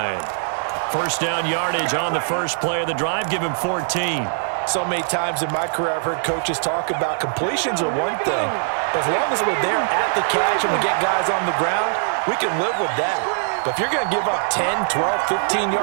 First down yardage on the first play of the drive. Give him 14. So many times in my career, I've heard coaches talk about completions are one thing. But as long as we're there at the catch and we get guys on the ground, we can live with that. But if you're going to give up 10, 12, 15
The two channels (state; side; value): silent; left; digital silence